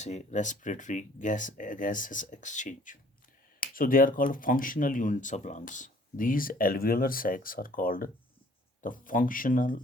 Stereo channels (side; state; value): both; normal; correlation 0.56